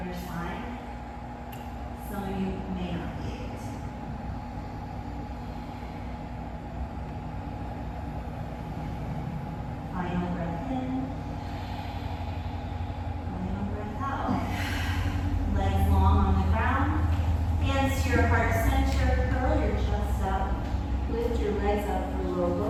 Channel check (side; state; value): both; identical; correlation 1.00